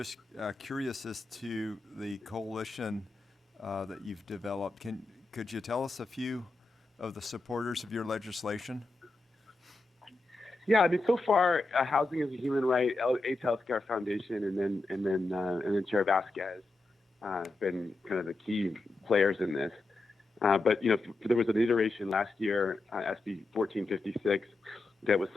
curious as to the coalition that you've developed. Could you tell us a few of the supporters of your legislation? Yeah, I mean, so far, Housing is a Human Right, AIDS Healthcare Foundation, and then Chair Vasquez have been kind of the key players in this. But there was an iteration last year, SB 1456, that was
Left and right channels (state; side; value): quieter; right; 3.1 dB